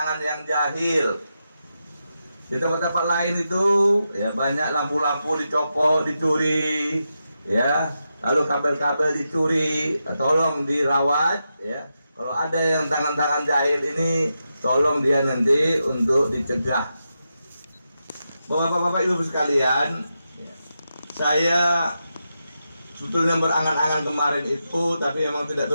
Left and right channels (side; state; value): both; inverted; correlation -0.87